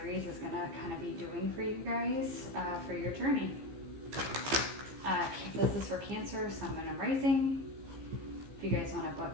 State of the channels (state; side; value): late; left; 15 ms